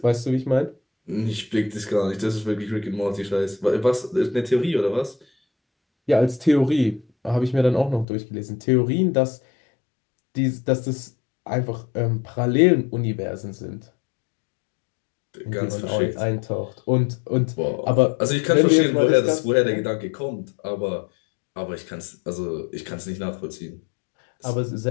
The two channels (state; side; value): drops out; right; at 8.1 s